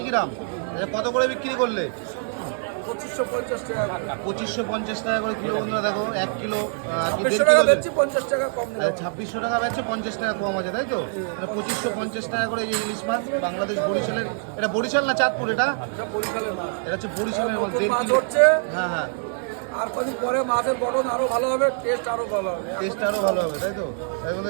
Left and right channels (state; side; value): silent; left; 62 dB below the other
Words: গ্রাম। আচ্ছা কত করে বিক্রি করলে? 2550 টাকা। 2550 টাকা করে কিলো। বন্ধুরা দেখো 1 কিলো 2600 টাকা বেচছি, 50 টাকা কম নেব। 2600 টাকা বেচছে, 50 টাকা কম আছে তাই তো? 2550 টাকা করে এই ইলিশ মাছ বাংলাদেশ বরিশালের। এটা বরিশাল না চাঁদপুর? এটা এটা বরিশালের মাছ। এটা হচ্ছে বরিশালের মাছ। 1.5 মাছ কিলো। হচ্ছে। হ্যাঁ হ্যাঁ, আর কদিন পরে মাছের গঠন আরো ভালো হবে, টেস্ট আরো ভালো হবে। টেস্ট আরও ভালো হবে তাই তো? তাই